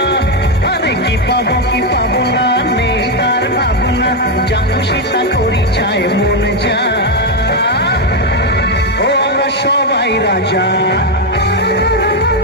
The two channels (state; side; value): normal; both; correlation 0.04